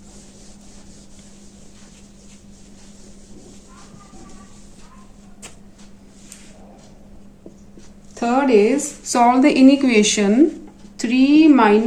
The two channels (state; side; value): identical; both; correlation 1.00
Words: Third is solve the inequation 3